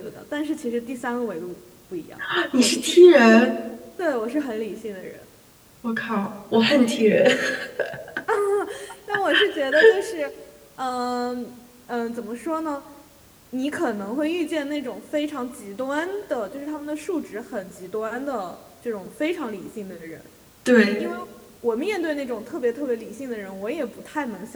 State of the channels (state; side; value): identical; both; correlation 1.00